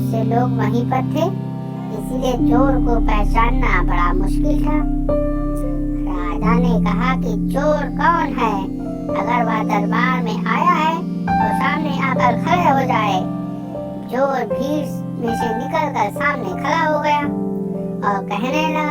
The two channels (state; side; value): identical; both; correlation 1.00